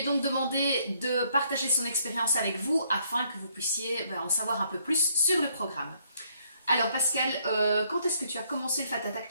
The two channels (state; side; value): inverted; both; correlation -0.68